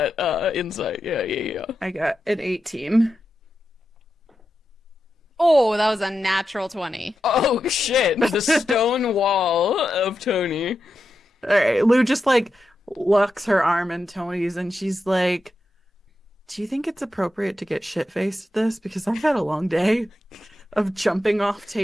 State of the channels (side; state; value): both; normal; correlation 0.88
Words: insight. Yeah. I got an 18. Oh, that was a natural 20. Oh shit! The stone wall of Tony. All right, Lou just like locks her arm in Tony's, and she's like, "Do you think it's appropriate to get shit-faced this? Because I've had a long day of jumping off